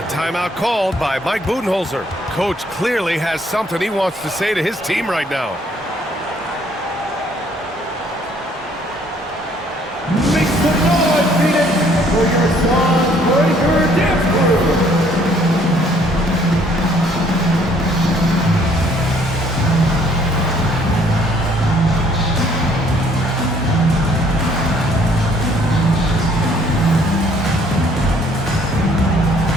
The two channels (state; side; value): normal; both; correlation 0.62